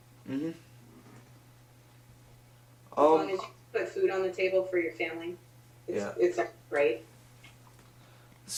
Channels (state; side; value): identical; both; correlation 1.00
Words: Mm-hmm. As long as you put food on the table for your family, it's great.